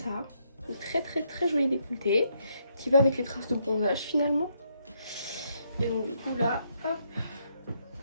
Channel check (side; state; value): both; inverted; correlation -0.75